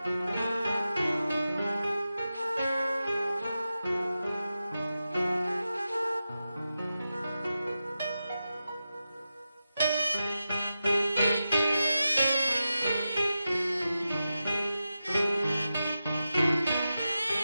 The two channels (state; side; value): inverted; both; correlation -0.91